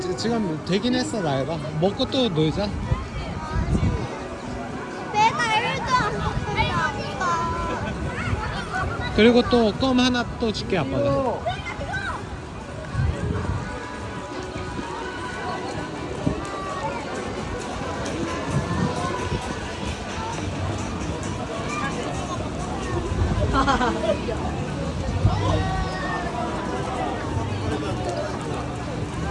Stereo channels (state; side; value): identical; both; correlation 1.00